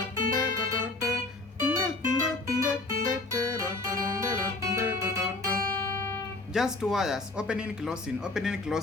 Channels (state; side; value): quieter; right; 3.1 dB